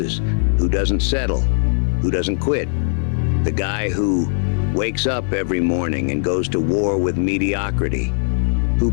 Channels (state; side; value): silent; right; 56 dB below the other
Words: who doesn't settle, who doesn't quit. The guy who wakes up every morning and goes to war with mediocrity, who